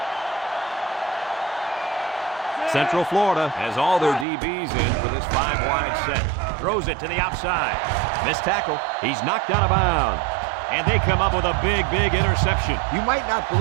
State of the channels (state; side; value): drops out; left; at 4.2 s